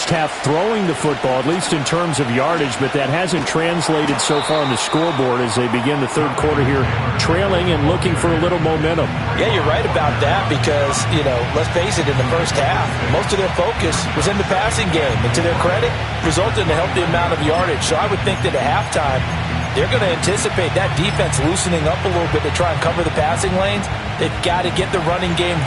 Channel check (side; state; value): both; identical; correlation 1.00